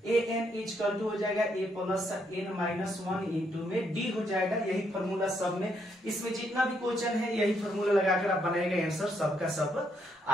ए एन इक्वल टू हो जाएगा ए प्लस एन माइनस 1 इंटू में डी हो जाएगा। यही फॉर्मूला सब में, इसमें जितना भी क्वेश्चन है यही फॉर्मूला लगाकर आप बनाएगा, आंसर सबका सब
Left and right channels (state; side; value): normal; both; correlation 0.74